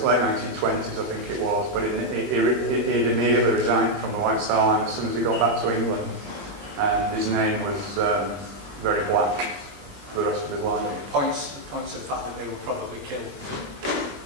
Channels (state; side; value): late; left; 21 ms